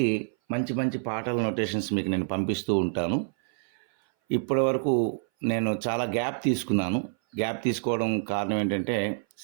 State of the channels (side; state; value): left; silent; 58 dB below the other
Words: మంచి మంచి పాటల నొటేషన్స్ మీకు నేను పంపిస్తూ ఉంటాను. ఇప్పటి వరకు నేను చాలా గ్యాప్ తీసుకోవడం కారణం ఏంటంటే